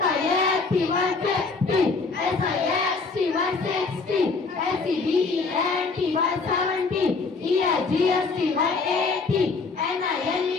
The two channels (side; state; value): right; quieter; 4.3 dB